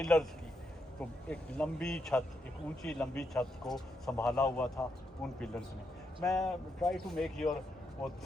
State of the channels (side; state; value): both; normal; correlation 0.81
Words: की, तो एक लंबी छत, एक ऊंची लंबी छत को संभाला हुआ था उन पिलर्स ने। मैं ट्राई टू मेक योर वो